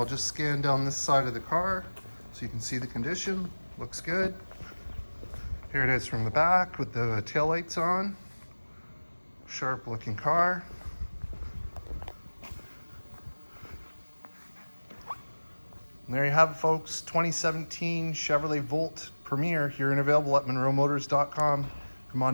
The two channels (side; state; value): both; inverted; correlation -1.00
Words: just scan down this side of the car so you can see the condition. Looks good. Here it is from the back with the taillights on. Sharp looking car. And there you have it, folks. 2017 Chevrolet Volt Premier here and available at MonroeMotors.com. Come